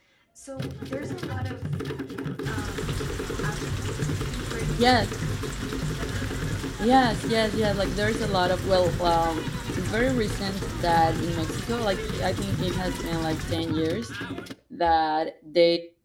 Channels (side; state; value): both; identical; correlation 1.00